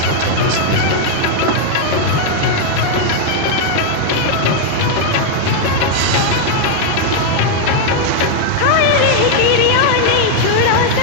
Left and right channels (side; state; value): both; different; correlation 0.00